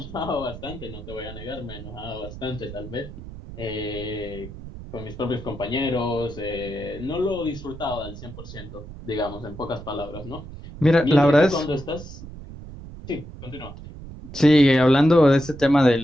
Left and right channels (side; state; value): right; noise; rumble, 13 dB below the sound